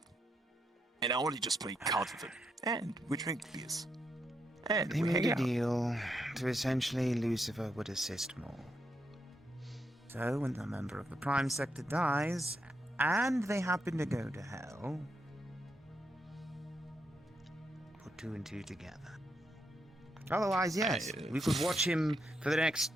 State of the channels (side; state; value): both; normal; correlation 0.81